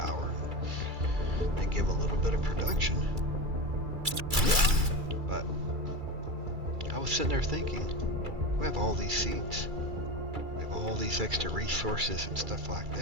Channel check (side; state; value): left; late; 2.3 ms